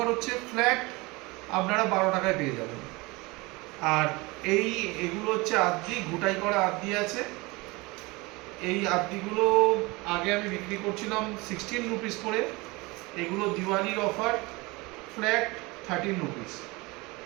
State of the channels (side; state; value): left; quieter; 24.1 dB